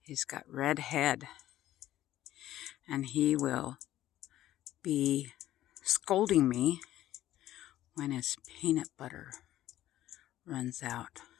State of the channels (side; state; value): right; quieter; 13.6 dB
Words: He's got red head. And he will be scolding me when his peanut butter runs out.